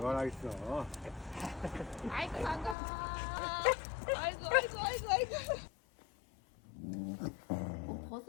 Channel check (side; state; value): right; drops out; at 2.8 s